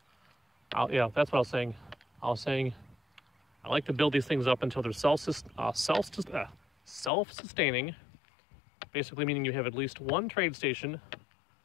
Yeah, that's what I was saying. I was saying I like to build these things up until they're self-sustaining. Basically meaning you have at least one trade station,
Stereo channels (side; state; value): right; drops out; at 7.1 s